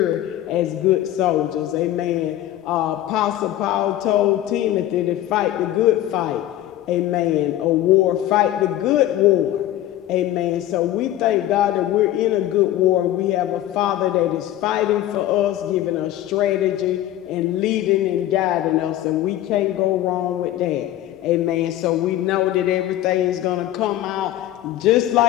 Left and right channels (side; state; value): right; quieter; 13.4 dB